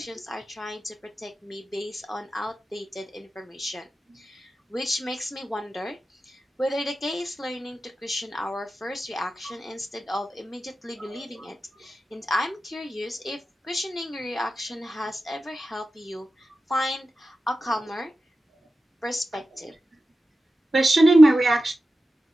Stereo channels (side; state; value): both; normal; correlation 0.93